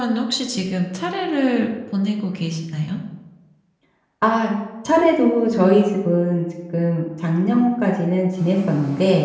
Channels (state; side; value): identical; both; correlation 1.00